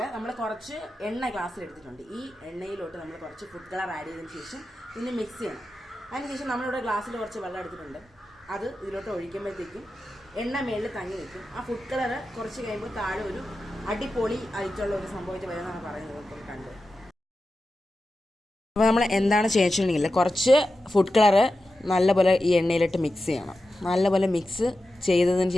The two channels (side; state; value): both; normal; correlation 0.92